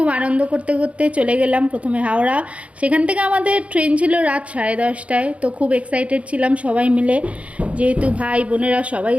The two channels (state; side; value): late; left; 0.063 ms